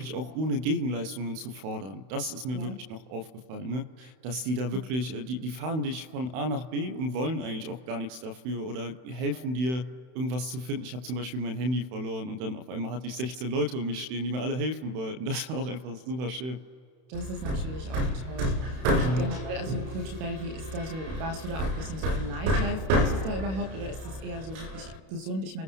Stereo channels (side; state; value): left; late; 31 ms